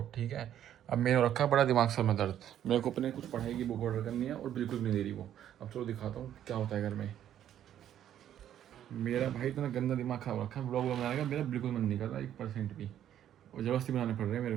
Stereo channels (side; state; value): left; quieter; 10.8 dB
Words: ठीक है। अब मैंने रखा बड़ा दिमाग सर में दर्द, मेरे को अपने कुछ पढ़ाई की बुक ऑर्डर करनी है और बिल्कुल भी नहीं दे रही वो। अब चलो दिखाता हूँ क्या होता है घर में। मेरा भाई इतना गंदा दिमाग खराब रखा है, ब्लॉग बनाने का मेरा बिल्कुल मन नहीं कर रहा 1% भी, और ज़बरदस्ती बनाने पड़ रहे हैं मेरे